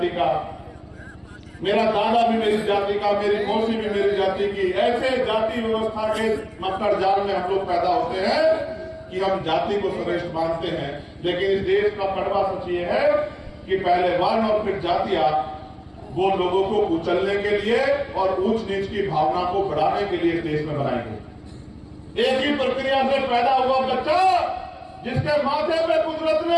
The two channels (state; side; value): identical; both; correlation 1.00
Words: का, मेरा दादा भी मेरी जाति का, मेरी मौसी भी मेरी जाति की। ऐसे जाति व्यवस्था के मकर जाल में हम लोग पैदा होते हैं कि हम जाति को श्रेष्ठ मानते हैं। लेकिन इस देश का कड़वा सच ये है कि पहले वर्ण और फिर जातियां वो लोगों को कुचलने के लिए और ऊंच नीच की भावना को बढ़ाने के लिए इस देश में बनाई गई। एक ही प्रक्रिया से पैदा हुआ बच्चा, जिसके माथे पे कुदरत